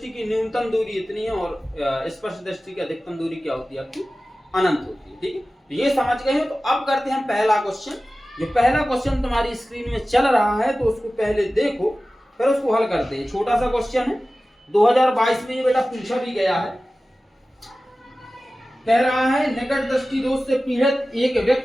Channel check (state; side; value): normal; both; correlation 0.96